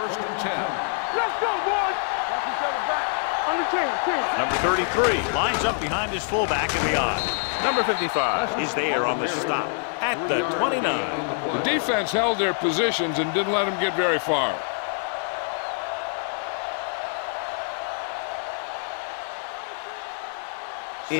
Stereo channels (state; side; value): silent; right; 61 dB below the other